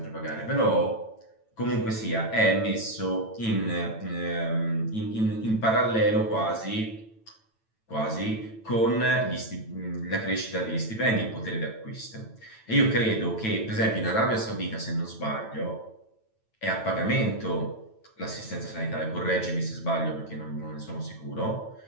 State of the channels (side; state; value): right; late; 9.1 ms